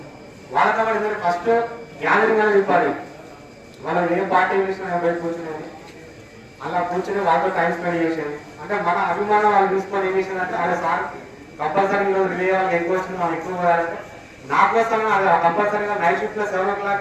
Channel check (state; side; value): identical; both; correlation 1.00